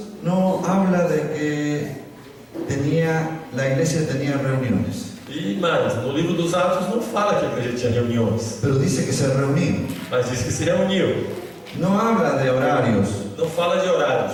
no habla de que la iglesia tenía reuniones, E mais, no livro dos Atos não fala que a igreja tinha reuniões, pero dice que se reunían. mas diz que se reuniu. No habla de horarios, Não fala de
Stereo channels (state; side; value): identical; both; correlation 1.00